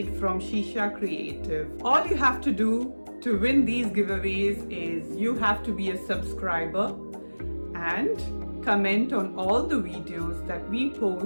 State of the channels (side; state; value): both; inverted; correlation -1.00